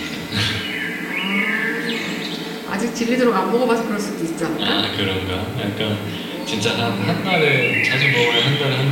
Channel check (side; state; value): both; identical; correlation 1.00